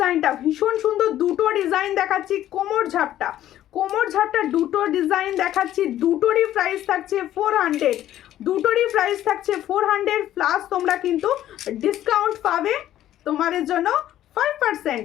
ভীষণ সুন্দর। দুটো ডিজাইন দেখাচ্ছি, কোমর ঝাপটা, কোমর ঝাপটা দুটো ডিজাইন দেখাচ্ছি, দুটোরই প্রাইস থাকছে 400, দুটোরই প্রাইস থাকছে 400 প্লাস তোমরা কিন্তু ডিসকাউন্ট পাবে তোমাদের জন্য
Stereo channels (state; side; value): quieter; right; 12.6 dB